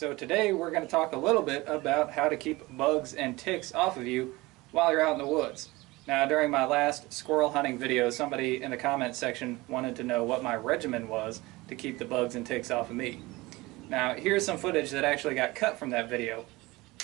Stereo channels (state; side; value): quieter; left; 21.3 dB